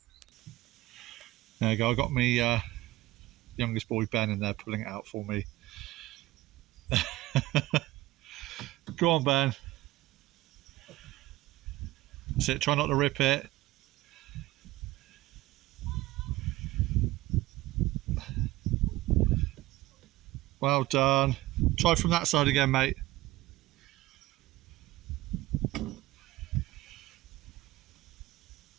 There you go, I got my youngest boy Ben in there pulling it out for me. Go on, Ben. That's it, try not to rip it. Well done. Try from that side again, mate.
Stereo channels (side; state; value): left; quieter; 18.0 dB